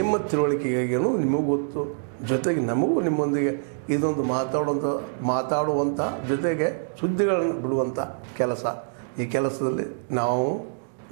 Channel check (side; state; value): left; silent; digital silence